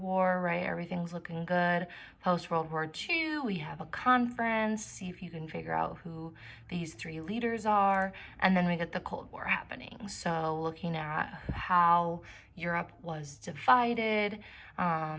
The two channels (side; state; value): both; identical; correlation 1.00